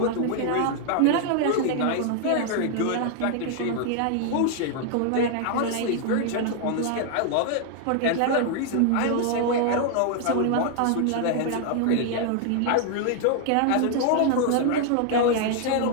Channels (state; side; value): different; both; correlation 0.00